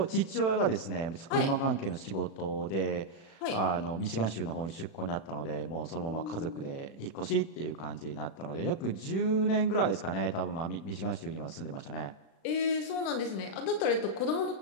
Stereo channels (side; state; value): right; late; 36 ms